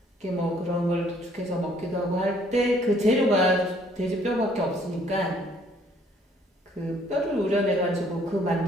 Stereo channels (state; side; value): normal; both; correlation 0.62